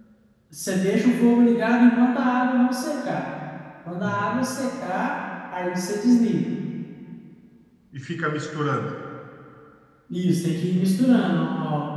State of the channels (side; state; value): both; identical; correlation 1.00